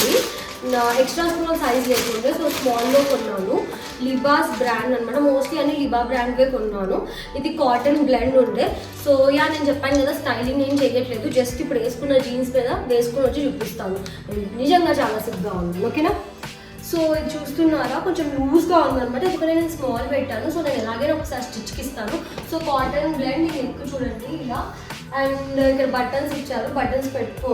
ఎక్స్ట్రా స్మాల్ సైజ్ లేకుండే, సో స్మాల్లో కొన్నాను. లిబాస్ బ్రాండ్ అనమాట, మోస్ట్లీ అన్ని లిబా బ్రాండ్వే కొన్నాను. ఇది కాటన్ బ్లెండ్ ఉండే. సో నేను చెప్పాను కదా స్టైలింగ్ ఏం చేయట్లేదు, జస్ట్ ఇప్పుడు వేసుకున్న జీన్స్ మీద వేసుకొని వచ్చి చూపిస్తాను. నిజంగా చాలా సిగ్గా ఉంది, ఓకేనా? సో ఇది చూస్తున్నారా, కొంచెం లూజ్గా ఉందన్నమాట, ఎందుకంటే నేను స్మాల్ పెట్టాను. సో నేను ఎలాగైనా ఒకసారి స్టిచ్కి ఇస్తాను. సో కాటన్ బ్లెండ్ ఇది ఎక్కువ చూడండి ఇలా. అండ్ ఇక్కడ బటన్స్ ఇచ్చారు, బటన్స్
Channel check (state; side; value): identical; both; correlation 1.00